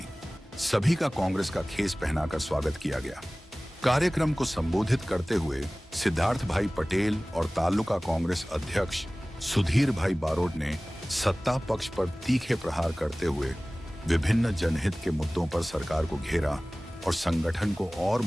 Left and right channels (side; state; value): both; normal; correlation 0.98